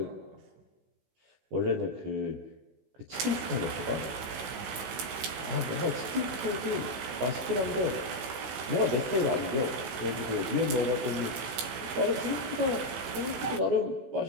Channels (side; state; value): left; late; 17 ms